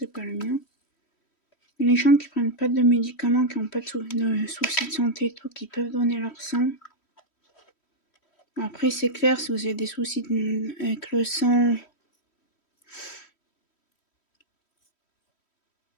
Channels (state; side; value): late; right; 3.1 ms